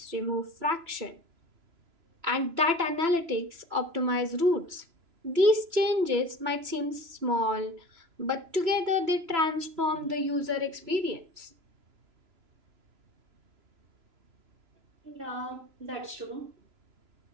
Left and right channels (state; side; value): late; left; 3.0 ms